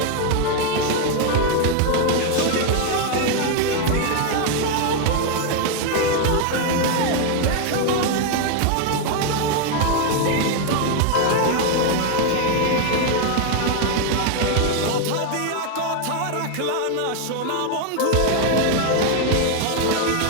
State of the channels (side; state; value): both; different; correlation 0.01